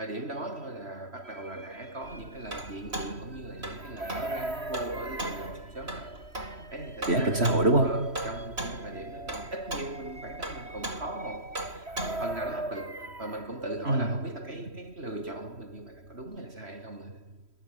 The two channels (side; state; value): left; late; 3.1 ms